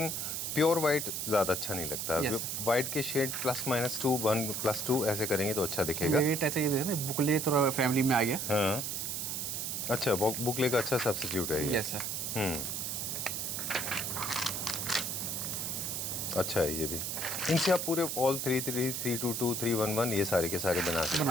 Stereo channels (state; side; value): noise; right; hiss, 2 dB below the sound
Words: प्योर वाइट ज़्यादा अच्छा नहीं लगता। वाइट के शेड +-2 1+2 ऐसे करेंगे तो अच्छा दिखेगा। ऐसे ये देखो बुकले थोड़ा फैमिली में आ गया। हाँ अच्छा, बुकले का अच्छा सब्स्टिट्यूट है ये। Yes sir. अच्छा है ये भी। इनसे आप पूरे ऑल 3-3, 322, 311 ये सारे के सारे बना